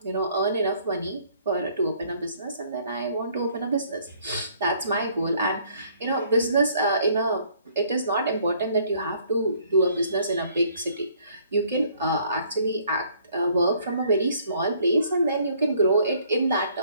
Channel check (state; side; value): inverted; both; correlation -0.62